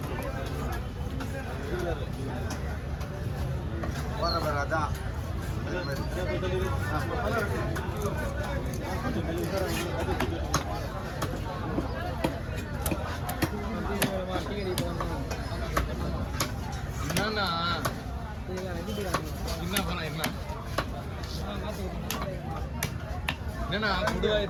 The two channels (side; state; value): both; identical; correlation 1.00